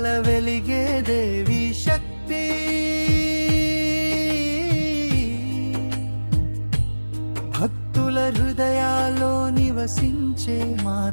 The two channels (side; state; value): both; inverted; correlation -1.00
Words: వెలిగే దేవి శక్తి, భక్తుల హృదయాల్లో నివసించే